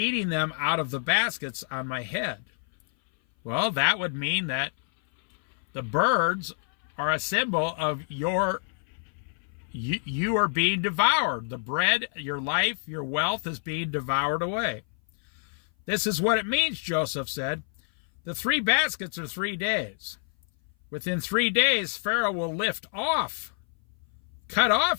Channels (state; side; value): silent; right; 57 dB below the other